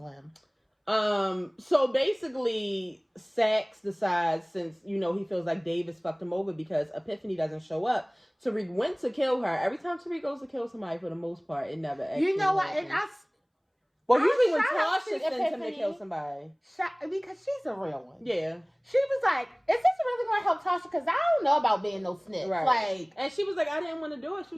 So basically, Saxe decides, since, you know, he feels like Davis fucked him over because Epiphany doesn't show up, Tariq went to kill her. Every time Tariq goes to kill somebody, for the most part, it never actually You know what? happens. And Well, usually when Tasha sends him to kill somebody. Because she's a real one. Yeah. She was like, is this really going to help Tasha? Because I don't know about being no snitch. Right. Like, and she was like, I didn't want to do it. She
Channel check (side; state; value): both; identical; correlation 1.00